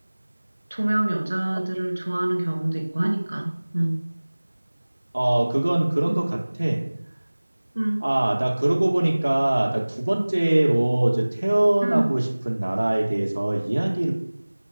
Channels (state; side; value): inverted; both; correlation -1.00